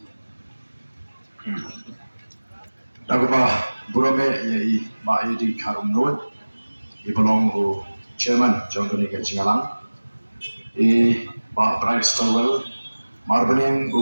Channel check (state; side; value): inverted; both; correlation -1.00